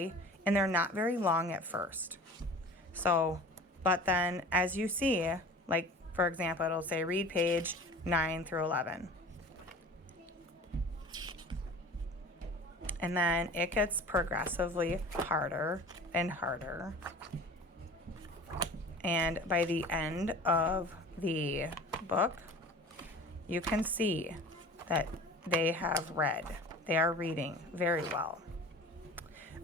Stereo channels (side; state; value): both; normal; correlation 0.41